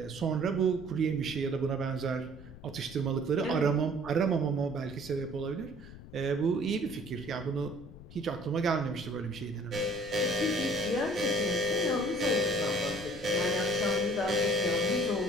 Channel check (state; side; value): noise; left; rumble, 16 dB below the sound